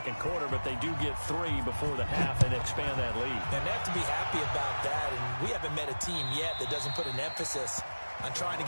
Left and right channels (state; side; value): inverted; both; correlation -1.00